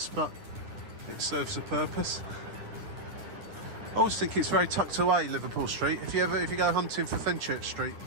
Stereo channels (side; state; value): left; late; 9.9 ms